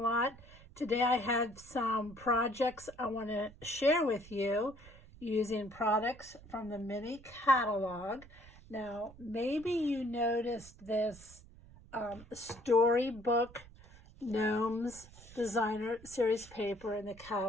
Today I have some projects I want to share with you using products from the mini catalog. Now maybe you noticed this Storybook Gnomes Designer Series paper in the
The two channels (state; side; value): noise; right; rumble, 21 dB below the sound